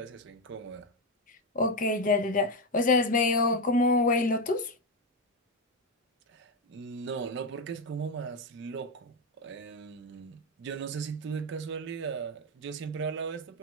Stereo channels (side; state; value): both; normal; correlation 0.09